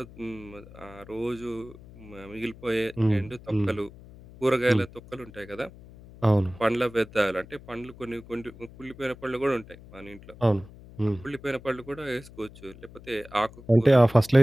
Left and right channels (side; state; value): left; noise; hum, 19 dB below the sound